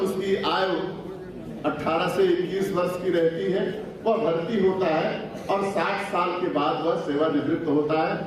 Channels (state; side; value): identical; both; correlation 1.00